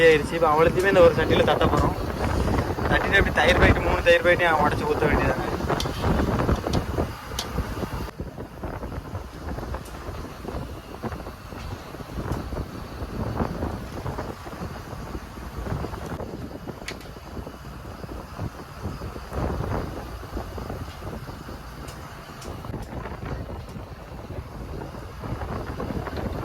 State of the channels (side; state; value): both; identical; correlation 1.00